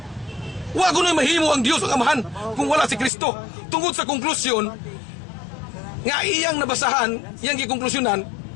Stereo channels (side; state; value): right; drops out; at 3.1 s